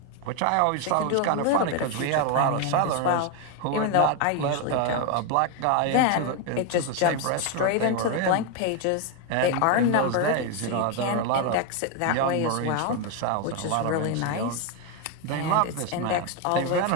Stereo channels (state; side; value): different; both; correlation 0.02